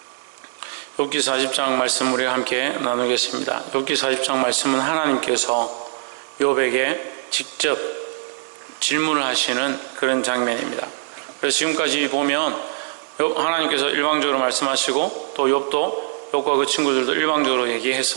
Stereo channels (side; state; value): left; silent; digital silence